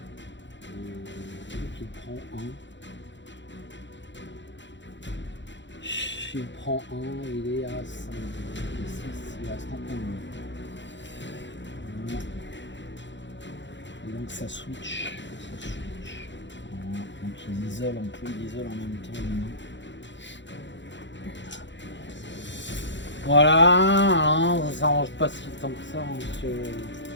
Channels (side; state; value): right; late; 0.53 ms